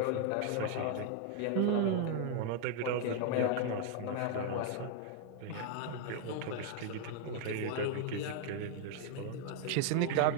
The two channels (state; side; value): different; both; correlation 0.00